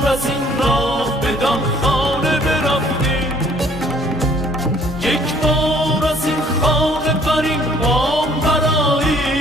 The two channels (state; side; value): normal; both; correlation 0.59